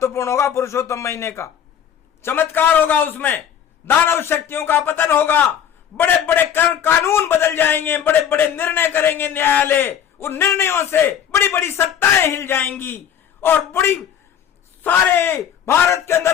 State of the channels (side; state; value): right; quieter; 9.1 dB